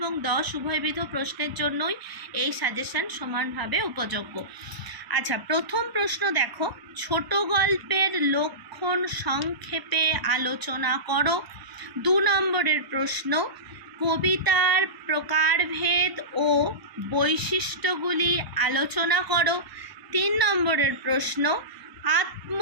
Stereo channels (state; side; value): late; left; 1.0 ms